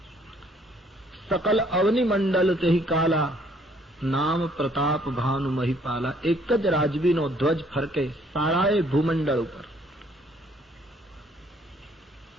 સકલ અવનિ મંડલ તેહી કાલા, નામ પ્રતાપ ભાનુ મહિપાલા. એક જ રાજવીનો ધ્વજ ફરકે સારાએ ભૂમંડળ ઉપર.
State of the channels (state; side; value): normal; both; correlation 0.63